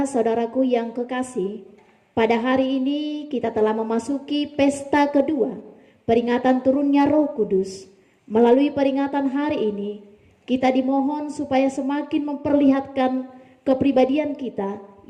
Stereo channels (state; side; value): identical; both; correlation 1.00